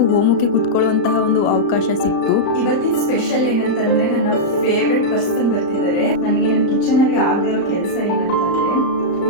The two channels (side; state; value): right; late; 35 ms